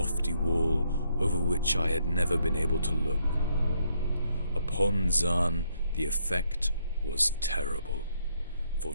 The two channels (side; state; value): both; inverted; correlation -0.73